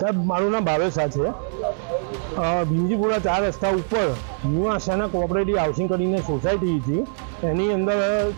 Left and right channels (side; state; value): left; silent; 62 dB below the other